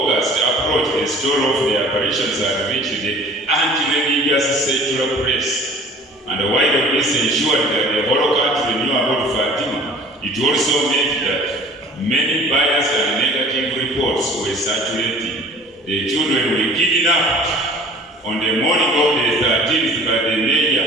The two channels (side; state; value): both; normal; correlation 0.46